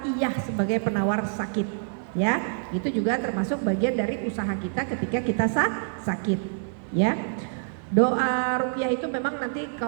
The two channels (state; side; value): silent; left; 56 dB below the other